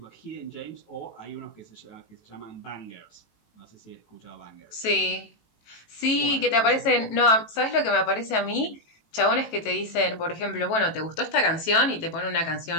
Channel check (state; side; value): late; right; 18 ms